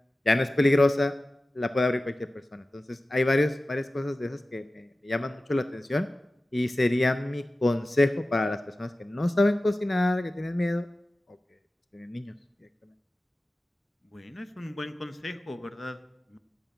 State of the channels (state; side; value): normal; both; correlation 0.96